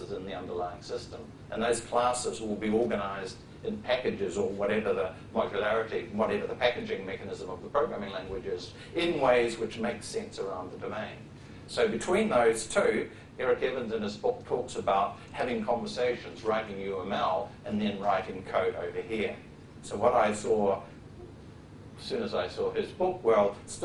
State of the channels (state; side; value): identical; both; correlation 1.00